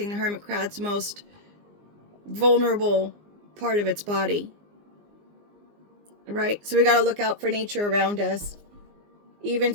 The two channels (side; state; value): left; late; 19 ms